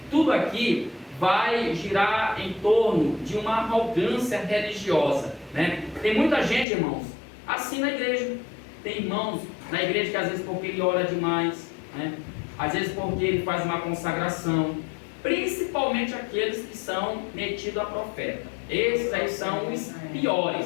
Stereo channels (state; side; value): drops out; right; at 6.7 s